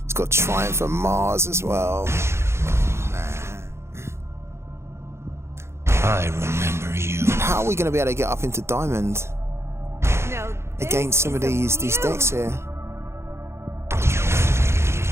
Triumph of Mars as well. I remember you. How are we going to be able to get up into Diamond against some of these decks here?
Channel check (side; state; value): left; late; 0.13 ms